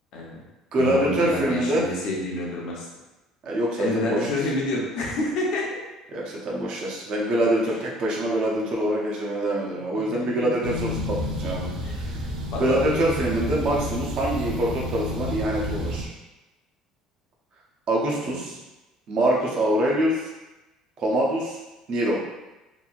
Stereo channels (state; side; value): normal; both; correlation 0.58